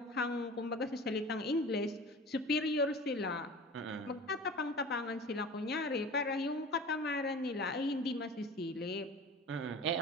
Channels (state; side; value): normal; both; correlation 0.38